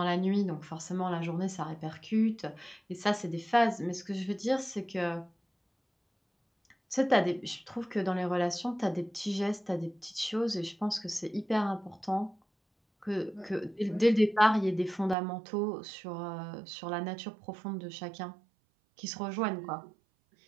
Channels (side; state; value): left; drops out; at 15.2 s